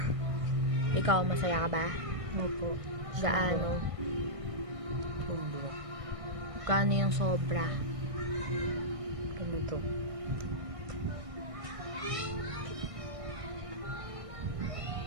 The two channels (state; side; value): late; left; 1.6 ms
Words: Ikaw, masaya ka ba? Opo. Gaano? Sobra. Gaano yung sobra? Ganito.